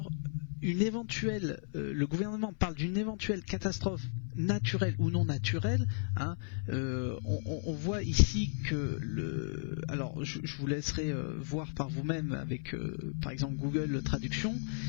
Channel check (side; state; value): right; silent; 55 dB below the other